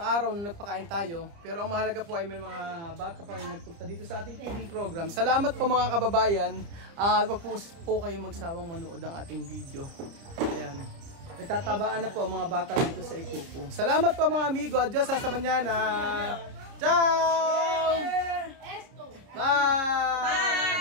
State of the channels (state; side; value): late; left; 30 ms